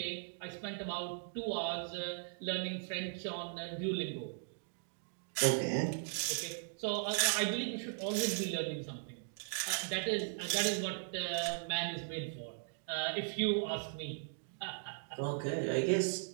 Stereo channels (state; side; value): silent; left; digital silence